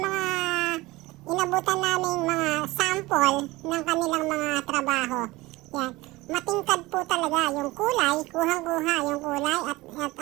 mga inabutan naming mga sample ng kanilang mga trabaho. Yan. Matingkad po talaga yung kulay, kuhang-kuha yung kulay at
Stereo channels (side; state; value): left; quieter; 20.5 dB